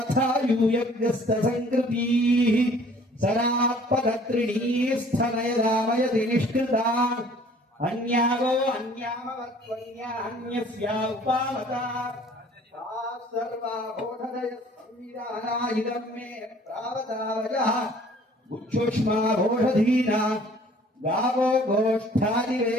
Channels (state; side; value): normal; both; correlation 0.54